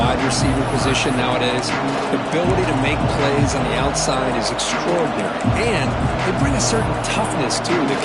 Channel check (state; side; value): identical; both; correlation 1.00